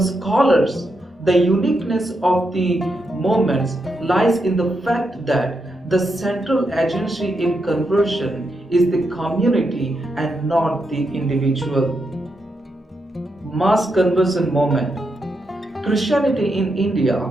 the uniqueness of the movements lies in the fact that the central agency in conversion is the community and not the individual. Mass conversion movement. Christianity in India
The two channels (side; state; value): both; normal; correlation 0.83